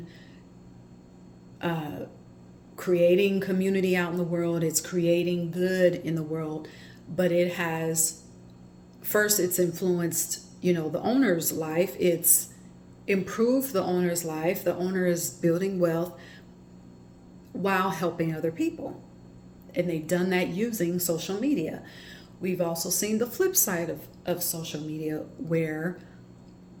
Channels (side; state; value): both; identical; correlation 1.00